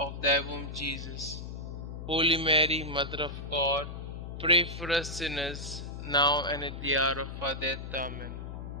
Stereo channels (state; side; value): noise; left; hum, 8 dB below the sound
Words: thy womb, Jesus. Holy Mary, Mother of God, pray for us sinners, now and at the hour of our death. Amen.